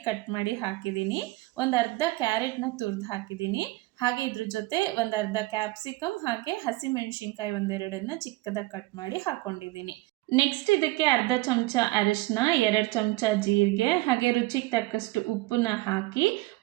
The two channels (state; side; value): quieter; left; 20.2 dB